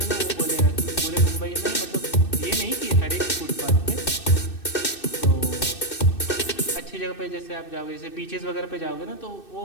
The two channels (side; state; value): right; late; 2.6 ms